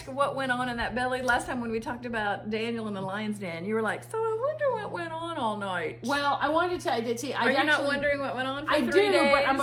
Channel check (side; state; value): both; identical; correlation 1.00